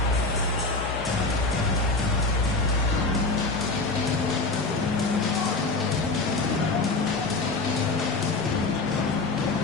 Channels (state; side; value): quieter; right; 3.5 dB